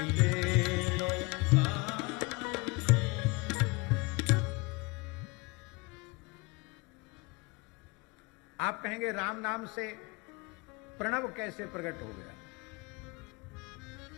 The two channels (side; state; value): right; quieter; 25.9 dB